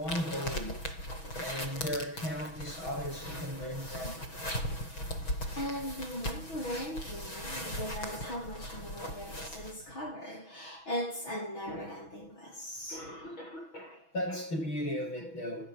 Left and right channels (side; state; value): right; late; 6.2 ms